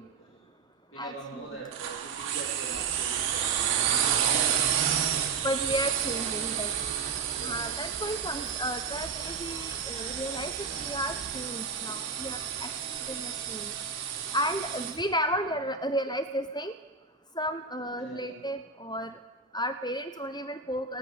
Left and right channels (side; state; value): left; quieter; 4.8 dB